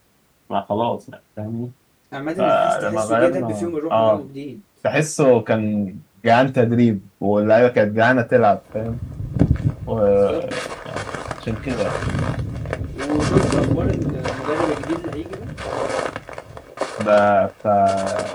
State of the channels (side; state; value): both; identical; correlation 1.00